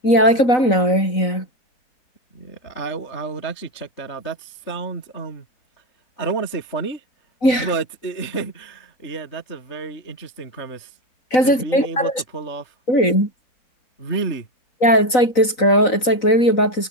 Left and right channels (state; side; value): late; right; 4.0 ms